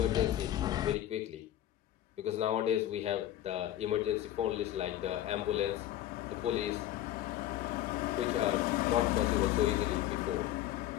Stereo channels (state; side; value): quieter; right; 12.8 dB